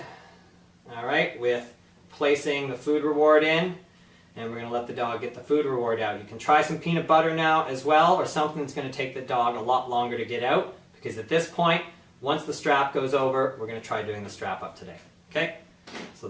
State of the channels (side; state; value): both; identical; correlation 1.00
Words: all right, with placing the food reward in, and we're going to let the dog get the food reward out. You can try some peanut butter now as well, or something that's going to take the dog a lot longer to get out, because at this point, once the strap goes over, we're going to try doing the strap up today. Okay? So